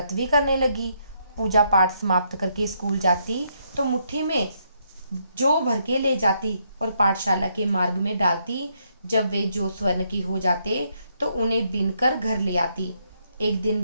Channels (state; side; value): inverted; both; correlation -0.75